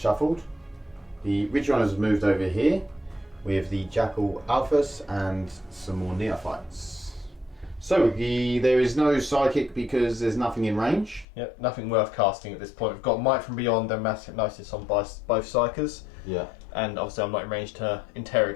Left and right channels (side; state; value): right; drops out; at 11.2 s